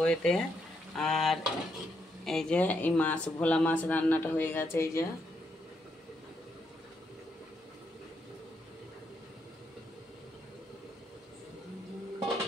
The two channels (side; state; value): both; normal; correlation 0.78